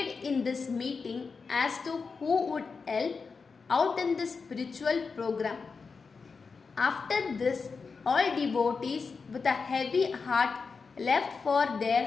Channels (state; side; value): quieter; right; 4.9 dB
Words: in this meeting as to who would help out in the spiritual program. After this, all devotees with a heavy heart left for